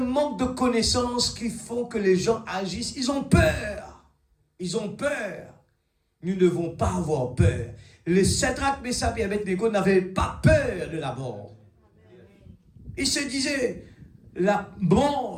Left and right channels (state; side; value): identical; both; correlation 1.00